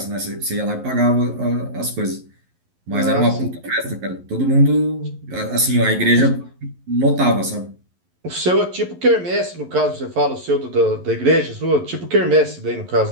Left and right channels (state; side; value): late; left; 11 ms